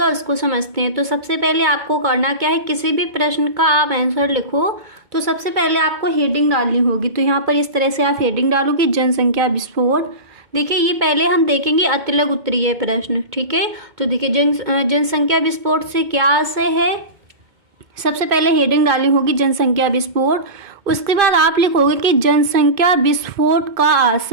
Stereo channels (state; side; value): late; left; 2.2 ms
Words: उसको समझते हैं। तो सबसे पहले आपको करना क्या है, किसी भी प्रश्न का आप आंसर लिखो तो सबसे पहले आपको हेडिंग डालनी होगी। तो यहाँ पर इस तरह से आप हेडिंग डालोगे जनसंख्या विस्फोट। देखिए ये पहले हम देखेंगे अतिलक उत्तरीय प्रश्न। ठीक है, तो देखिए जनसंख्या विस्फोट से क्या आशय है, सबसे पहले हेडिंग डालनी होगी जनसंख्या विस्फोट। उसके बाद आप लिखोगे कि जनसंख्या विस्फोट का